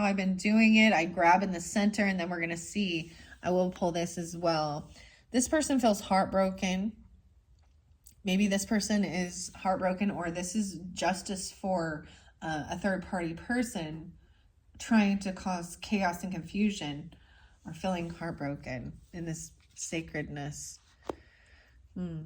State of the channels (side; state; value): both; identical; correlation 1.00